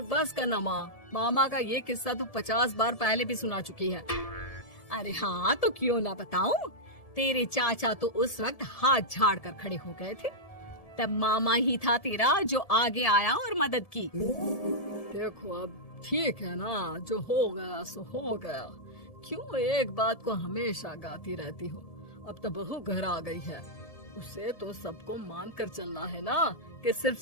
बस करना माँ, मामा का ये किस्सा तो 50 बार पहले भी सुना चुकी है। अरे हाँ, तो क्यों ना बताऊं। तेरे चाचा तो उस वक्त हाथ झाड़ कर खड़े हो गए थे। तब मामा ही था तेरा जो आगे आया और मदद की। देखो अब ठीक है ना, जो हो गया सो हो गया। क्यों एक बात को हमेशा गाती रहती हो। अब तो बहू घर आ गई है, उसे तो सबको मान कर चलना है ना कि सिर्फ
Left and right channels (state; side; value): late; right; 1.7 ms